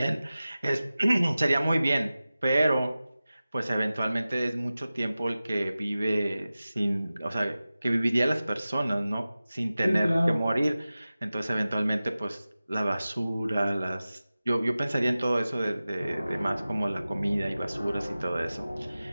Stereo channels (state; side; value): inverted; both; correlation -0.96